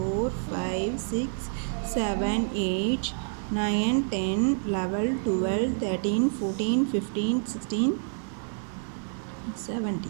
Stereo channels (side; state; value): left; silent; digital silence